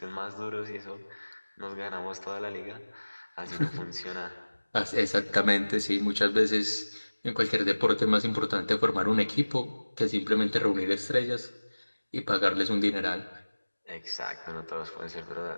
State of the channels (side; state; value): both; inverted; correlation -1.00